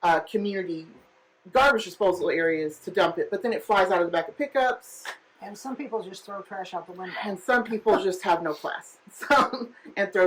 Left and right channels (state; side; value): identical; both; correlation 1.00